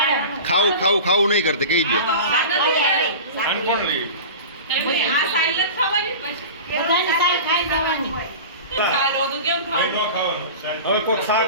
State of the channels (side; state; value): both; inverted; correlation -0.33